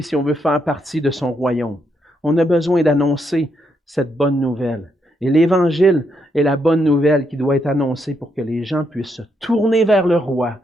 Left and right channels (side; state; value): both; normal; correlation 0.78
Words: si on veut faire partie de son royaume. On a besoin d'annoncer cette bonne nouvelle. Et l'Évangile est la bonne nouvelle qui doit être annoncée pour que les gens puissent se tourner vers le roi